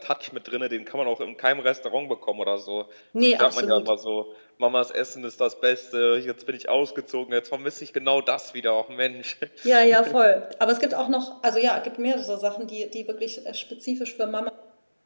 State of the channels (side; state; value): both; inverted; correlation -1.00